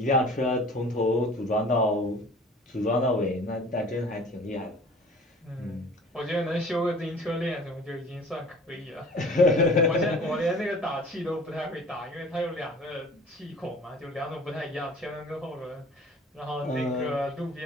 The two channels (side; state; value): both; normal; correlation 0.47